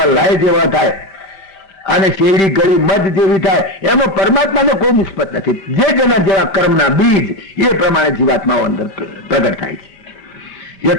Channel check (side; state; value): right; late; 5.7 ms